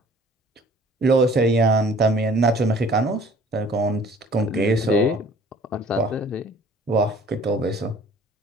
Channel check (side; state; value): both; normal; correlation 0.52